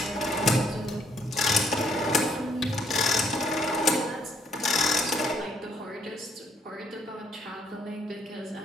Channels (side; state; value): both; normal; correlation 0.68